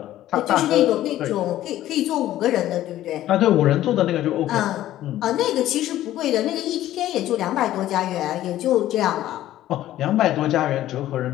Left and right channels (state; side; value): quieter; right; 13.7 dB